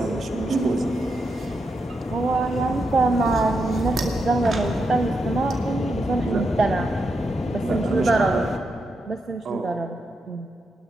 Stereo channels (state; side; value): normal; both; correlation 0.84